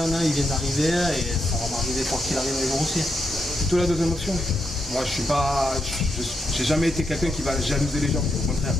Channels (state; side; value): normal; both; correlation 0.81